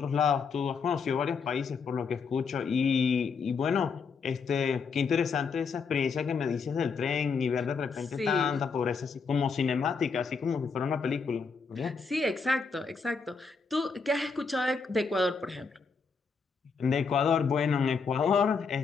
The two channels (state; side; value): quieter; right; 5.2 dB